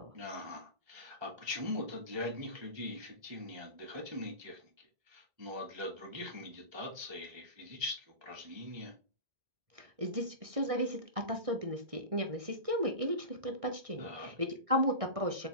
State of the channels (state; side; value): late; left; 1.6 ms